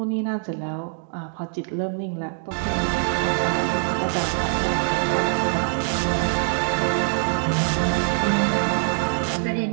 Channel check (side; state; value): left; silent; digital silence